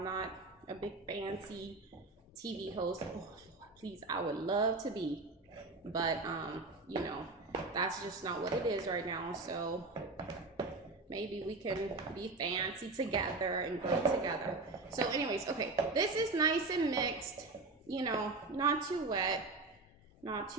not a big fancy TV host. Oh, Lord, please, I would love to be, but you know, that's just not what it is right now. So maybe we can be fancy together and grow together. So anyways, okay, this is nice and mixed, you know, not too wet, not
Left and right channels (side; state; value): left; quieter; 3.5 dB